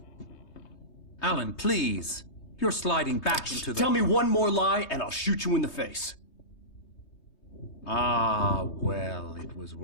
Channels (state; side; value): late; right; 3.2 ms